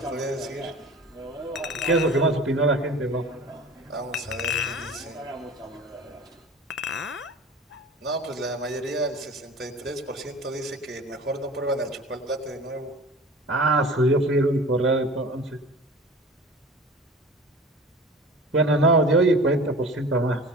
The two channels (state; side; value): normal; both; correlation 0.39